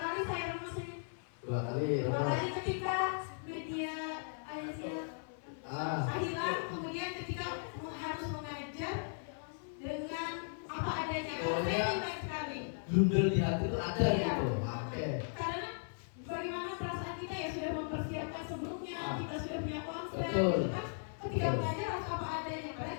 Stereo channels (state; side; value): silent; right; 53 dB below the other